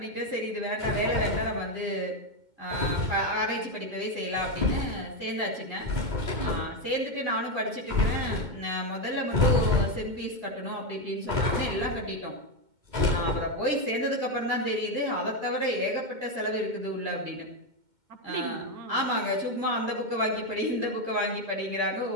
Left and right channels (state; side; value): late; left; 2.1 ms